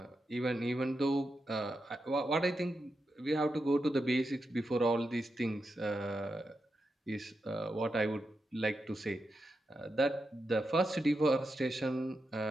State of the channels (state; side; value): normal; both; correlation 0.87